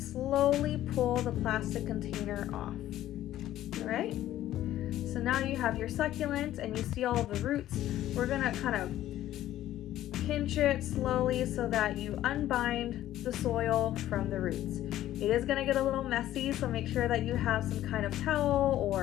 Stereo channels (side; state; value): right; quieter; 13.4 dB